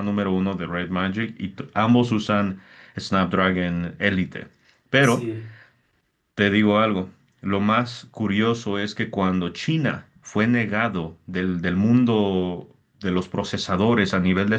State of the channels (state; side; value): identical; both; correlation 1.00